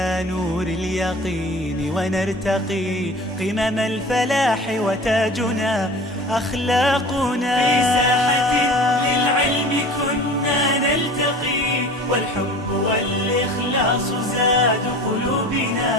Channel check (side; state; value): both; normal; correlation 0.40